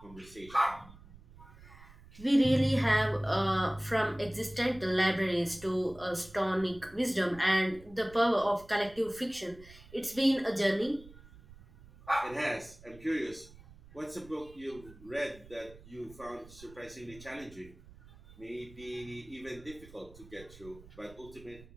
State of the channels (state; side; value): noise; right; rumble, 21 dB below the sound